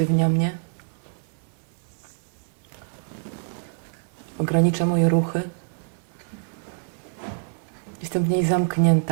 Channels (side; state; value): left; silent; digital silence